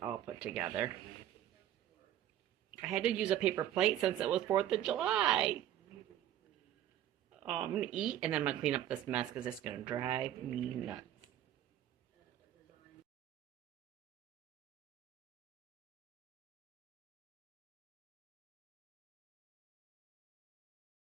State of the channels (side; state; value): left; quieter; 11.8 dB